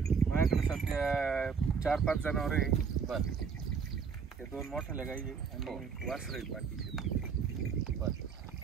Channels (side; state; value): left; quieter; 6.1 dB